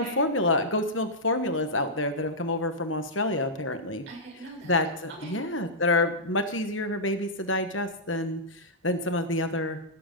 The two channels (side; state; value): both; normal; correlation -0.11